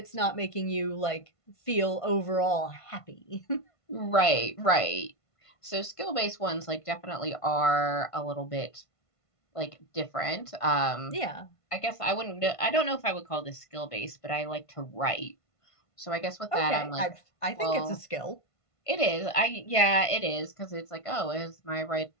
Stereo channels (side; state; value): right; late; 1.5 ms